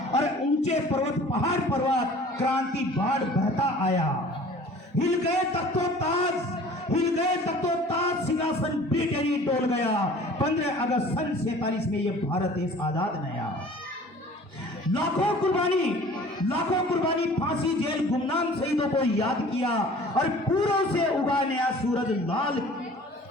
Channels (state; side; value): normal; both; correlation 0.47